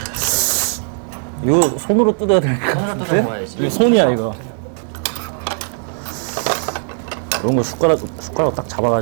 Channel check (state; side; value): silent; left; 56 dB below the other